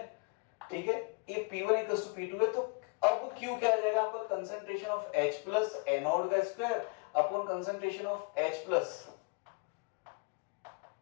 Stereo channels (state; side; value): quieter; right; 31.9 dB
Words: ठीक है, ये P1 इक्वल्स टू P2 है, तो अब Q क्या आ जाएगा आपका, concentration of H plus anode का square upon concentration of H plus